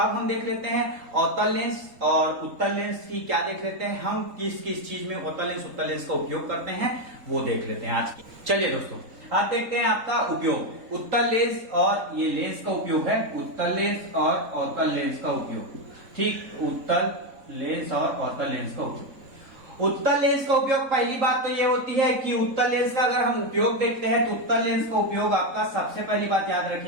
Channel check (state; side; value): late; left; 3.7 ms